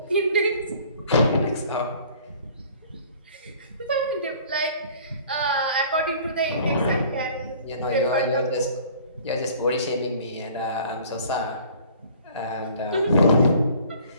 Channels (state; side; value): inverted; both; correlation -0.51